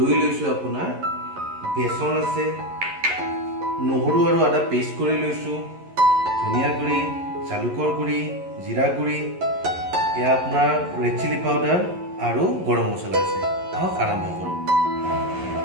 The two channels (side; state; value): left; late; 11 ms